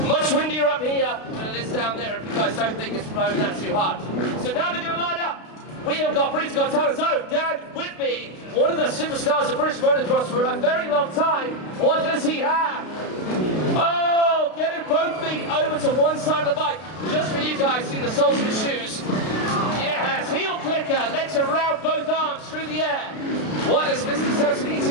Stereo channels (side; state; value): right; late; 32 ms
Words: Much windier up here than it is down there if you guys don't think it's blowing that too hard. So now they're going to line up. We have got Britain's Got Talent's own Dan Whitby, one of the superstars of British motocross for a very long time. What does he have? Oh, getting both feet over to one side of the bike. Just for you guys, seeing the soles of his shoes. Yes, heel clicker, legs around both arms through the air. What has Mr. Samson